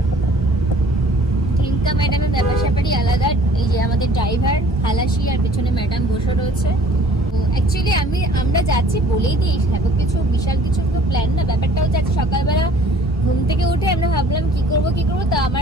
ঢেঙ্কা ম্যাডামের ব্যাপার স্যাপারই আলাদা। এই যে আমাদের ড্রাইভার খালাসি, আর পেছনে ম্যাডাম বসে রয়েছে। অ্যাকচুয়ালি আমরা যাচ্ছি বলেই দিই, সেরকম কিছু বিশাল কিছু তো প্ল্যান না। ব্যাপারটা হচ্ছে সকালবেলা ঘুম থেকে উঠে আমরা ভাবলাম কি করব। তো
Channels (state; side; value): normal; both; correlation 0.52